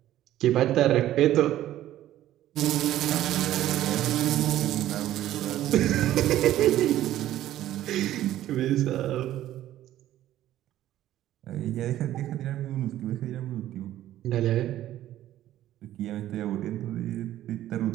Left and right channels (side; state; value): left; quieter; 13.3 dB